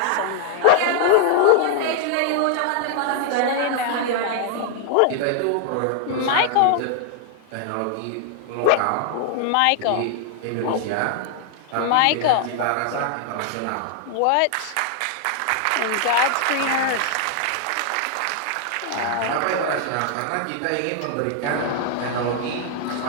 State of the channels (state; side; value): different; both; correlation 0.00